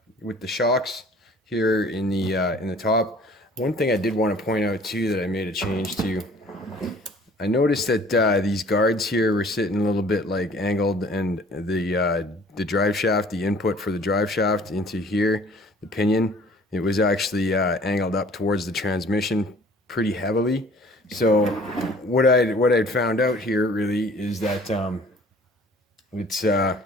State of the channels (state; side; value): normal; both; correlation 0.52